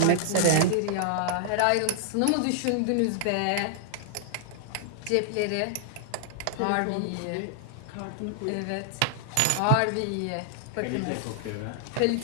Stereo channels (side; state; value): both; different; correlation -0.01